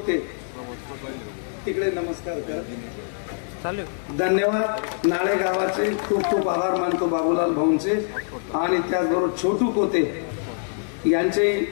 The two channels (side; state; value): right; silent; digital silence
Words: तिकडे नमस्कार कर. धन्यवाद. नाळे गावाचे खूप खूप आभार मानतो बाबूलाल भाऊंचे आणि त्याचबरोबर छोटू पोते यांचे